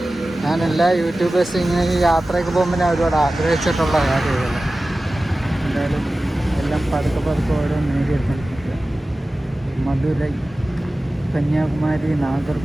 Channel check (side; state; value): both; normal; correlation 0.96